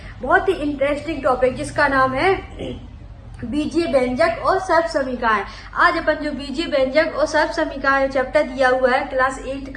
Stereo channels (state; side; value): identical; both; correlation 1.00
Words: बहुत ही इंटरेस्टिंग टॉपिक जिसका नाम है बीजीय व्यंजक और सर्व समीकरण। आज अपन जो बीजीय व्यंजक और सर्व समीकरण चैप्टर दिया हुआ है क्लास 8